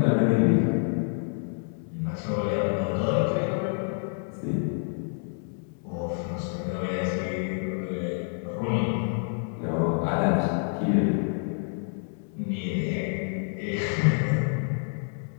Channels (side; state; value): right; silent; 60 dB below the other